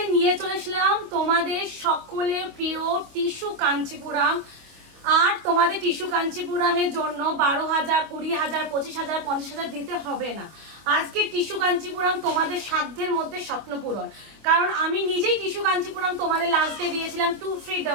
নিয়ে চলে এসলাম তোমাদের সকলের প্রিয় টিস্যু কাঞ্চিপুরাম। আর তোমাদের টিস্যু কাঞ্চিপুরামের জন্য 12,000, 20,000, 25,000, 50,000 দিতে হবে না। আজকে টিস্যু কাঞ্চিপুরাম তোমাদের সাধ্যের মধ্যে স্বপ্ন পূরণ। কারণ আমি নিজেই টিস্যু কাঞ্চিপুরাম তোমাদের লাস্ট ডে দিয়েছিলাম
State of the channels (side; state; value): left; late; 25 ms